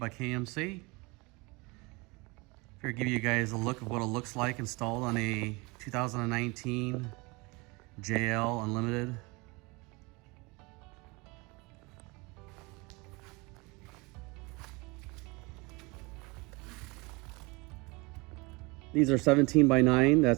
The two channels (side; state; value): left; quieter; 26.1 dB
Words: KMC. Here, give you guys a look of what it looks like installed on a 2019 JL Unlimited. These are 17 by 9.